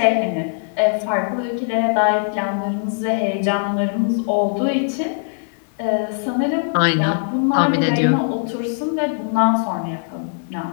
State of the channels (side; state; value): right; silent; digital silence